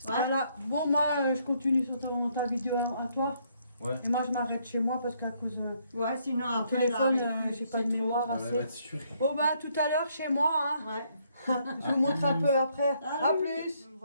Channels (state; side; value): inverted; both; correlation -0.70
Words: Voilà. Bon, moi, je continue sur ta vidéo à toi. Ouais. Et moi, je m'arrête chez moi parce qu'à cause de Ouais, sinon mon après, téléphone, là, avec- j'ai pas de c'est trop. mémoire Voilà, elle va assez. être sûre. Bon, bah, tout à l'heure chez moi. Hein. Ouais. Je vous montre un peu après. Ah À oui. plus.